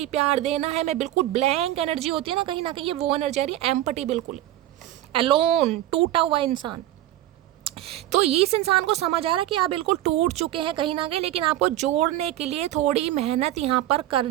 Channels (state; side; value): quieter; left; 14.0 dB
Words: प्यार देना है, मैं बिल्कुल ब्लैंक एनर्जी होती है ना कहीं ये वो एनर्जी आ रही है, एम्पटी, बिल्कुल एलोन, टूटा हुआ इंसान। तो इस इंसान को समझ आ रहा है कि आप बिल्कुल टूट चुके हैं कहीं ना कहीं, लेकिन आपको जोड़ने के लिए थोड़ी मेहनत यहाँ पर